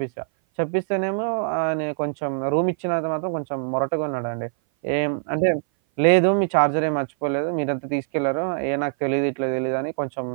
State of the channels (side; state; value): left; silent; 58 dB below the other